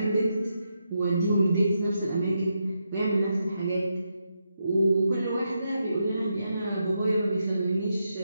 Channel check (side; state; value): both; inverted; correlation -0.83